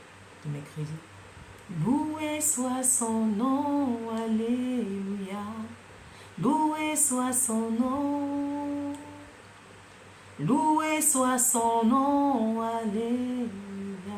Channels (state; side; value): identical; both; correlation 1.00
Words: de mercredi. Loué soit son nom, alléluia. Loué soit son nom. Loué soit son nom, alléluia.